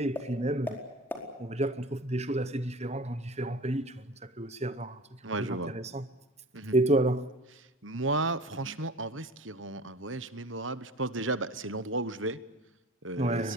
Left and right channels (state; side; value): normal; both; correlation 0.40